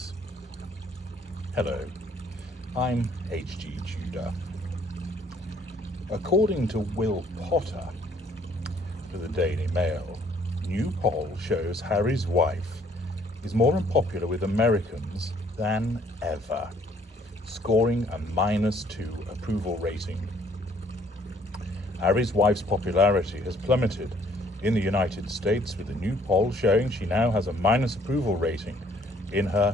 Hello, I'm H.G. Tudor. According to Will Potter for the Daily Mail, new poll shows Harry's wife is more unpopular with Americans than ever, scoring a -2 approval rating. Harry's wife's popularity has plummeted in the United States, with a new poll showing she now has a minus approval rating in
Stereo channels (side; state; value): both; normal; correlation 0.62